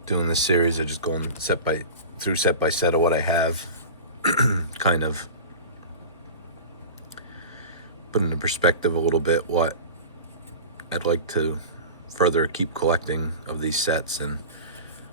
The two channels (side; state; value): both; inverted; correlation -0.33